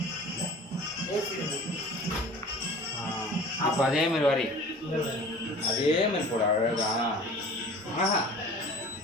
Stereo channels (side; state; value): both; normal; correlation 0.43